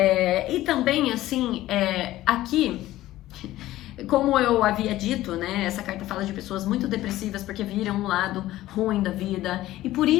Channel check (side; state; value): right; quieter; 15.5 dB